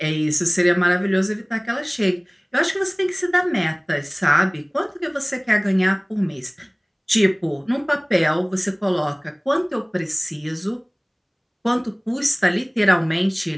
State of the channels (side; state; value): both; identical; correlation 1.00